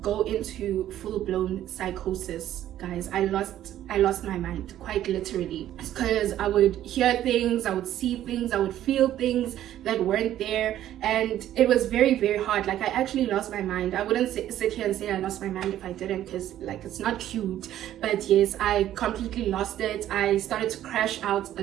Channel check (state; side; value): quieter; left; 12.3 dB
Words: go into full-blown psychosis, guys. I lost my mind, quite literally, because I would hear things, I would see things, I would feel things that weren't there, and it was very, very hard. Like, I actually lost my mind. I wouldn't sit here and say I lost my mind if I didn't, because like it's not cute, but yes, I completely lost it. I started to crash out a